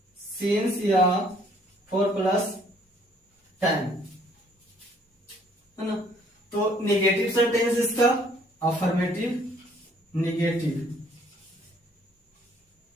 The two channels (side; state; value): both; normal; correlation 0.61